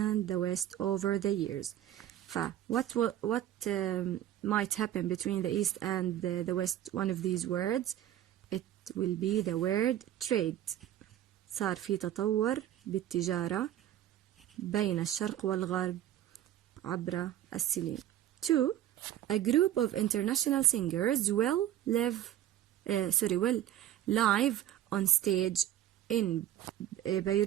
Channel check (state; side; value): quieter; left; 12.3 dB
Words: the West over the years. What might happen between the East and the West? One of these words. It will be the word trade. صار في تطور بالتجارة بين الشرق والغرب عبر السنين. 2. A group of international singers will live on stage in